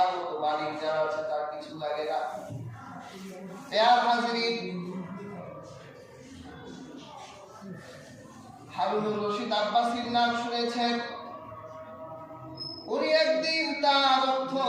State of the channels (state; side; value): identical; both; correlation 1.00